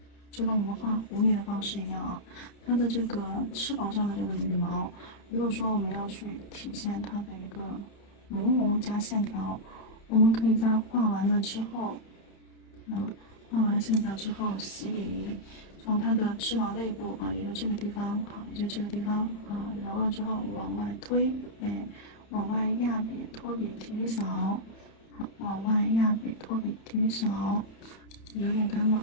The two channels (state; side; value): late; right; 31 ms